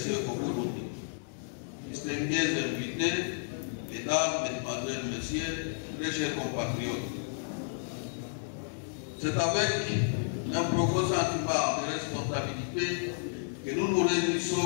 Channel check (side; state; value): right; silent; digital silence